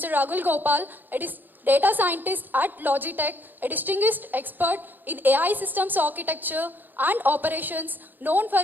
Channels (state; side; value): late; left; 0.089 ms